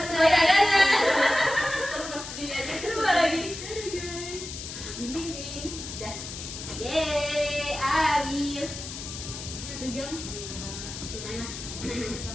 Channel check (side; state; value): left; noise; hiss, 9 dB below the sound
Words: Terus di aja Coba lagi. Guys. Ding. Dah. Yeay, habis 1 jam. Gimana?